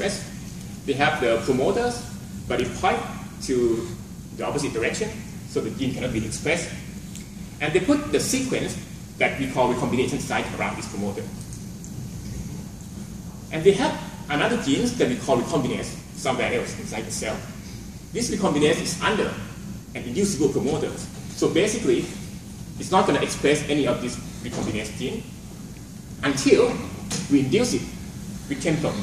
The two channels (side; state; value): both; identical; correlation 1.00